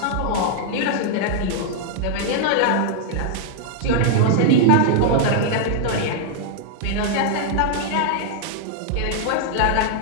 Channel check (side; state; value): both; different; correlation -0.01